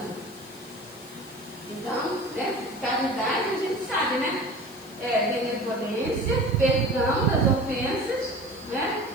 Então, caridade a gente sabe, né? Benevolência, perdão das ofensas, né?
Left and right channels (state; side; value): noise; left; hiss, 22 dB below the sound